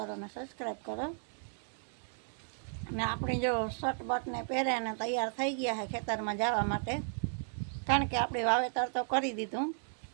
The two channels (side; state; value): left; silent; 55 dB below the other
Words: ने सब्सक्राइब करो। ने अपनी जो शर्ट बट ने पहरे ने तैयार थई गया है खेतर में जवा माटे, कारण के आपणे वावेतर तो करी दीधुं